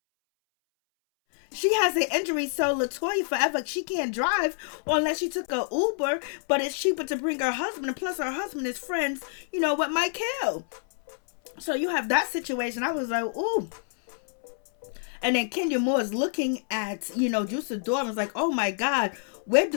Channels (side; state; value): right; silent; 60 dB below the other